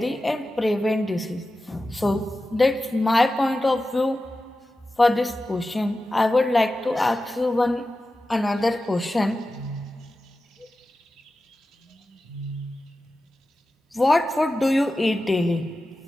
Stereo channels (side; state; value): both; normal; correlation 0.93